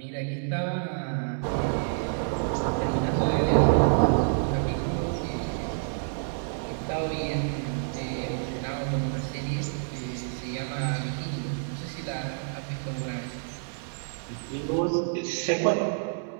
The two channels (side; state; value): left; silent; digital silence